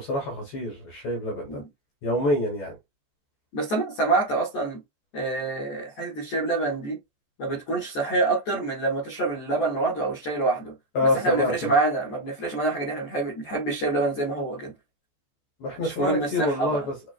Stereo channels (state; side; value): late; right; 14 ms